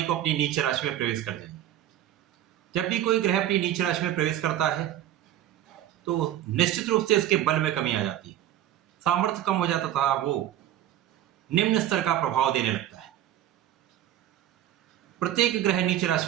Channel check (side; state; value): left; quieter; 12.2 dB